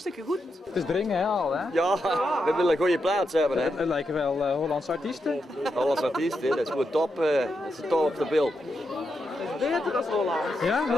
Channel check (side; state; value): both; normal; correlation 0.85